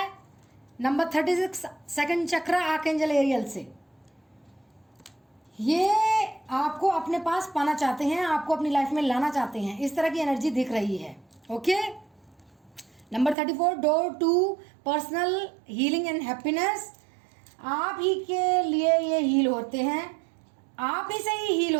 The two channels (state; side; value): drops out; left; at 13.4 s